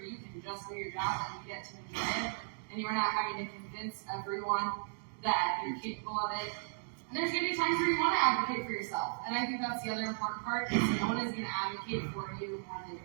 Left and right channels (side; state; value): left; silent; digital silence